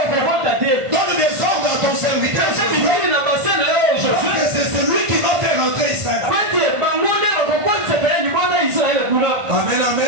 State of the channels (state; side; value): late; left; 1.5 ms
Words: Donne des ordres à ton serviteur. C'est celui qui va faire entrer Israël. Amen,